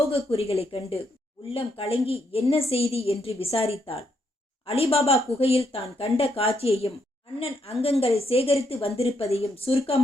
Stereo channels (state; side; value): normal; both; correlation 0.77